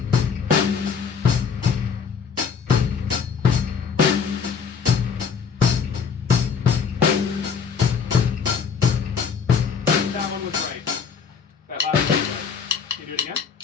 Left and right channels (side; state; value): right; quieter; 6.2 dB